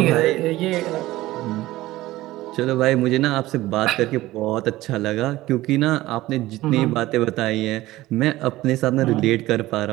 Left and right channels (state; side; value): quieter; left; 17.1 dB